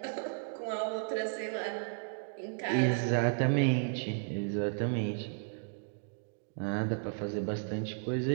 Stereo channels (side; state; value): left; silent; digital silence